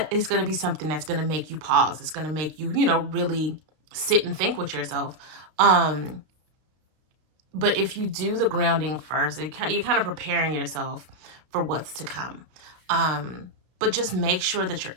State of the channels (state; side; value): late; left; 32 ms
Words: it's going to be something that's going to make you pause. It's going to make you, really sit and think with yourself. But if you do the grounding first, you're kind of preparing yourself for what's to come. But just make sure that you're